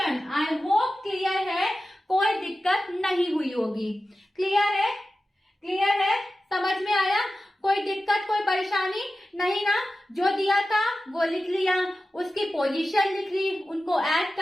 I hope clear है, कोई दिक्कत नहीं हुई होगी। क्लियर है? क्लियर है? समझ में आया? कोई दिक्कत कोई परेशानी नहीं ना? जो दिया था वो लिख लिया, उसकी पोजीशन लिख ली, उनको ऐड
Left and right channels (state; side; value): normal; both; correlation 0.94